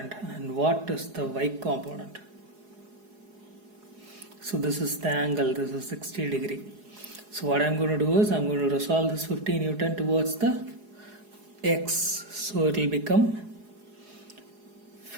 and what is the y component? So this is the angle, this is 60 degree. So what I'm going to do is I'm going to resolve this 15 Newton towards the x. So it will become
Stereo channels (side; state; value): left; late; 4.8 ms